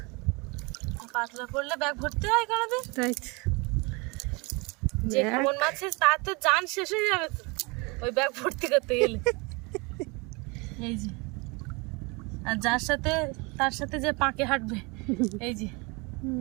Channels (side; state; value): left; quieter; 28.3 dB